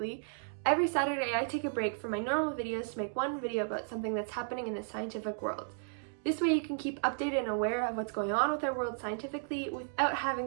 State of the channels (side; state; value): left; silent; digital silence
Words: every Saturday I take a break from my normal videos to make one video about something that's happening in the scientific world. This way you can keep updated and aware of what's going on with our world scientifically without having